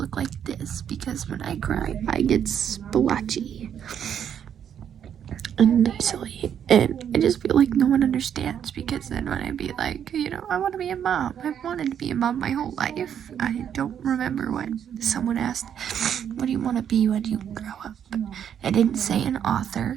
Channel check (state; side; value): quieter; left; 8.9 dB